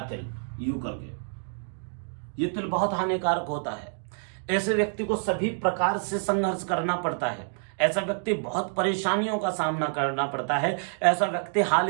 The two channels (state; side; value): silent; left; 60 dB below the other